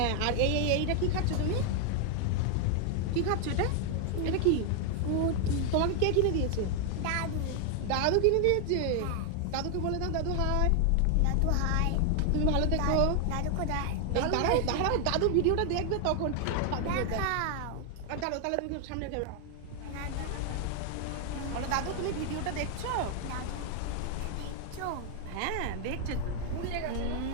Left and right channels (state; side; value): different; both; correlation 0.00